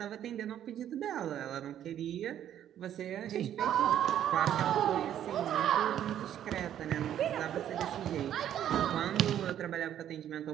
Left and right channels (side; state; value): left; quieter; 10.7 dB